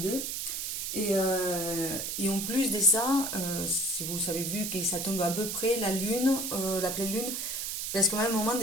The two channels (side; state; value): right; noise; hiss, 3 dB below the sound